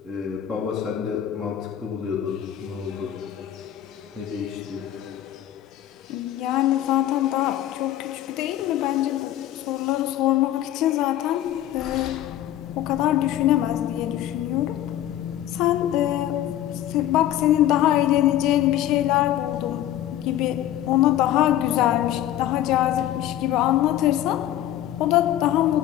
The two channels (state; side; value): quieter; right; 12.4 dB